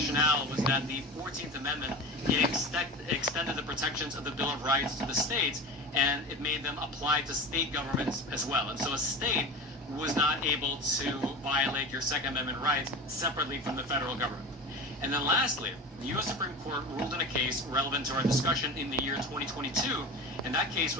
was that the 14th Amendment, it extended the protections of the Bill of Rights to the states, and it made them apply to state governments as well. And so a state was not able to violate your Second Amendment rights separately from the federal government. And then lastly, the U.S. Supreme Court ruled in a case relevant to our discussion in the year 2022, and that case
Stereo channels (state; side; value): normal; both; correlation 0.30